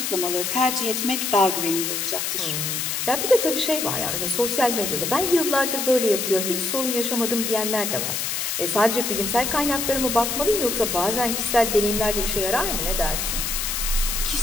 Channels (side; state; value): left; noise; hiss, 1 dB below the sound